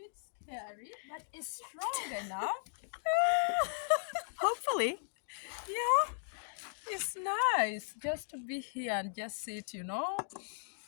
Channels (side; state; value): right; silent; digital silence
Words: scary, but it's strong enough. Hopefully. Yeah, it's nice just to be here and just sit,